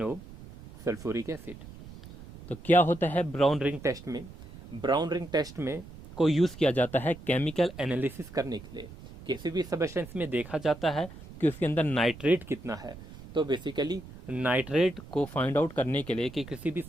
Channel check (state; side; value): noise; right; rumble, 16 dB below the sound